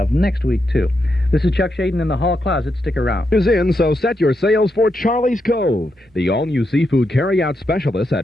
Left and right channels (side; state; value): both; normal; correlation 0.83